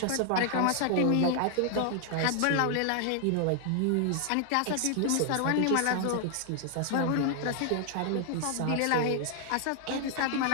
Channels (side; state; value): both; different; correlation 0.00